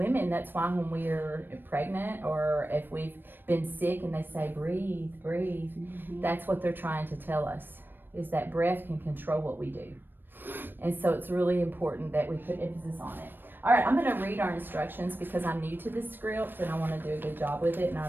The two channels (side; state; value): left; late; 0.095 ms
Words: that's why when we're pregnant or if we've been sick and they say, breathe, breathe, that's what they're trying to tell us, is that breath can control what we do. And so it's really important that we put emphasis on it. All right, I'm going to read our instructions because I'm new to this script and I want to do a good job with it and I